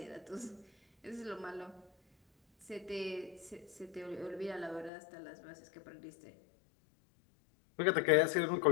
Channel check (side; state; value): right; drops out; at 4.9 s